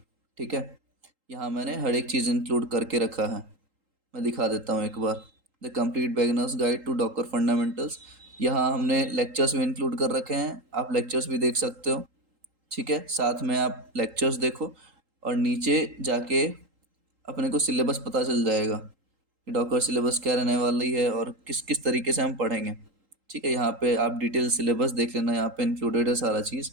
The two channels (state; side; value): late; left; 3.8 ms